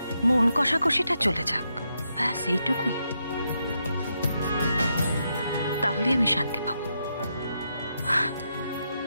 মন কষাকষিটা চলে যাক, ব্যাস এইটুকুই। তাহলে আমি শান্তি পাবো।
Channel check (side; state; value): both; inverted; correlation -0.82